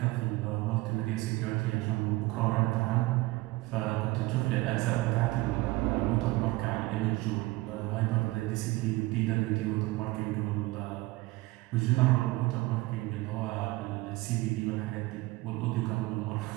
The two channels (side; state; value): left; quieter; 20.7 dB